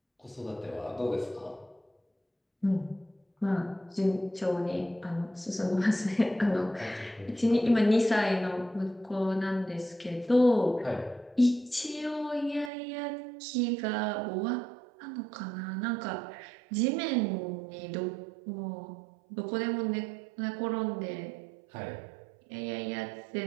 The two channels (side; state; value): left; drops out; at 12.7 s